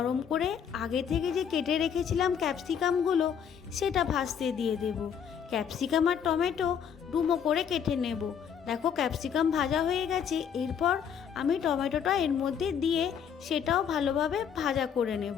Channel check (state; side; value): quieter; right; 7.8 dB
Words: করে আগে থেকে যে কেটে রেখেছিলাম ক্যাপসিকামগুলো সেটা ভাজতে দিয়ে দেব। ক্যাপসিকাম আর টমেটো ডুমো করে কেটে নেব। দেখো ক্যাপসিকাম ভাজা হয়ে গেছে। এরপর আমি টমেটোটা এর মধ্যে দিয়ে সেটাও ভালোভাবে ভাজা করে